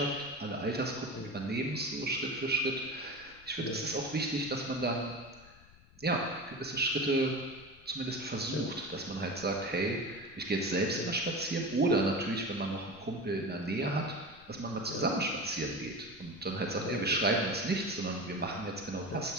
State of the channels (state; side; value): noise; left; rumble, 24 dB below the sound